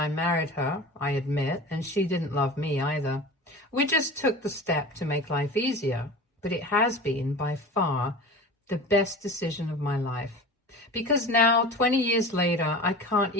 married her, I admit, and she didn't love me either. We just took the step to make life easier, but it has been by far the best decision of my life. Because now, 20 years later, I can't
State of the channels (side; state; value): both; normal; correlation 0.34